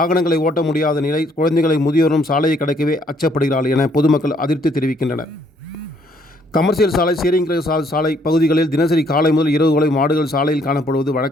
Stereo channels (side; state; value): both; normal; correlation 0.67